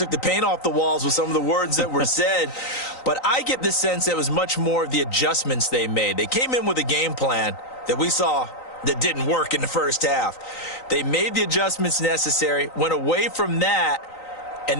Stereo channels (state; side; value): late; right; 3.9 ms